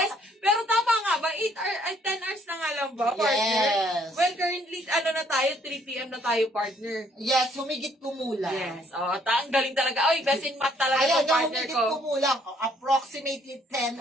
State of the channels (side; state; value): both; normal; correlation 0.65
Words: pero tama nga ba? 8 hours, ay 10 hours na nga lang ba, partner? Yes. Well, currently, na tayo, 3 p.m. na tayo, partner. Yes, humigit kumulang. Yes, ang galing talaga. Oy, best in math talaga Ayan, itong partner humigit ko. kumulang. Approximately 10